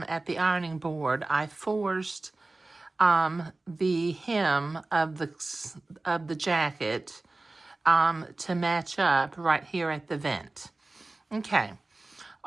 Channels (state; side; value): quieter; left; 3.1 dB